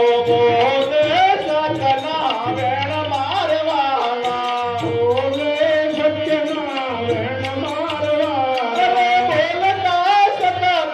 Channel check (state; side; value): identical; both; correlation 1.00